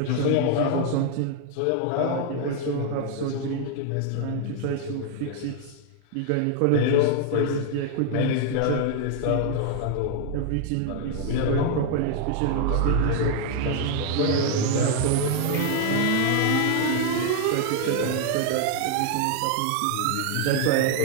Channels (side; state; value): both; different; correlation 0.00